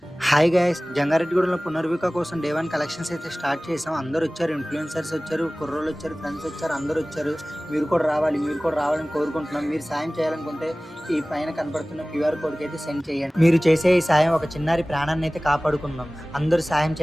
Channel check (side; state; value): both; normal; correlation 0.98